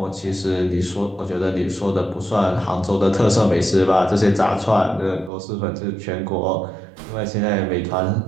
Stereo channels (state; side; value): drops out; left; at 5.3 s